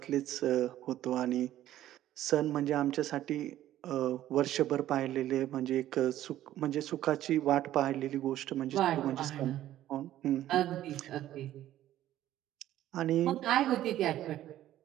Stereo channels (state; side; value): quieter; left; 13.1 dB